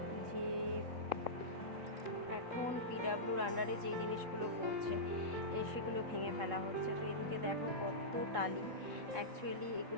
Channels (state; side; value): late; left; 3.7 ms